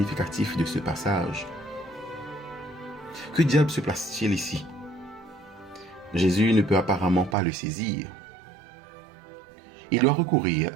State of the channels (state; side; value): drops out; left; at 7.4 s